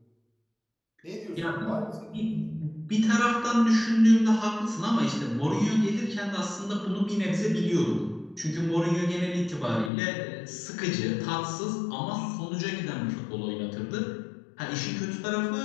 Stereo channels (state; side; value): drops out; right; at 9.9 s